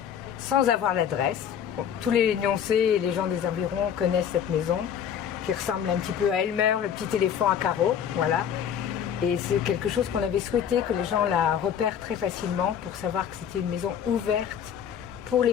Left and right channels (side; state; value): right; quieter; 8.7 dB